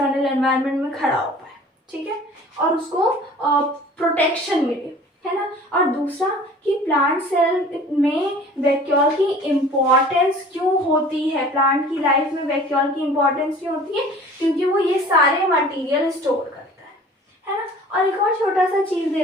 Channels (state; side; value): normal; both; correlation 0.47